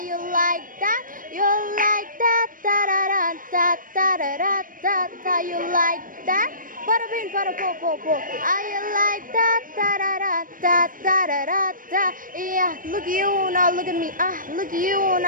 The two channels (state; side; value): late; left; 0.40 ms